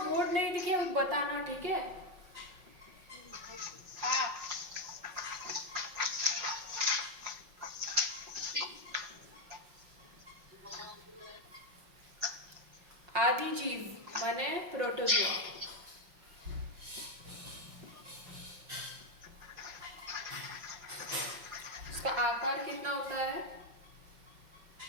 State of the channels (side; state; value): left; late; 5.6 ms